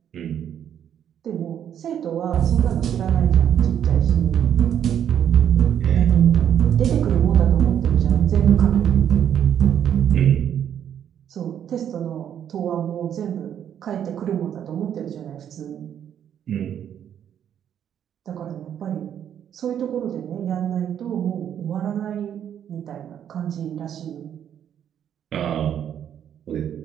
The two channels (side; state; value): left; quieter; 9.4 dB